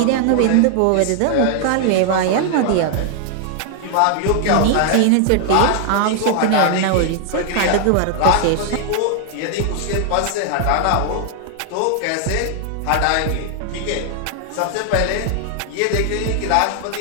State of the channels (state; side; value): different; both; correlation 0.00